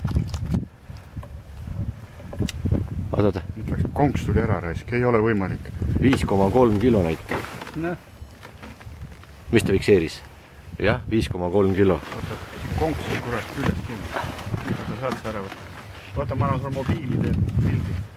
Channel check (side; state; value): both; identical; correlation 1.00